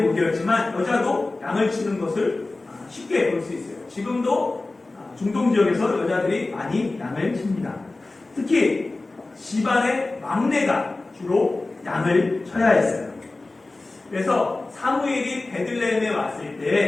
목이었지만 여자도 양을 치는 것을 쉽게 볼 수 있어요. 지금도 중동 지역에서 여자들이 많이 양을 칩니다. 특히 집안의 막내가 주로 양을 쳐야 했어요. 그래서 사무엘이 베들레헴에 왔을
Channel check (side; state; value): right; quieter; 3.2 dB